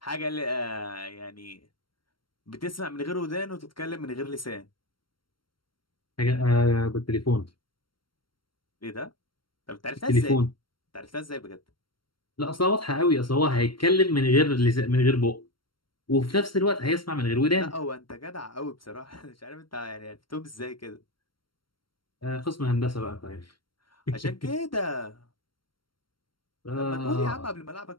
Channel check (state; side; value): late; right; 0.73 ms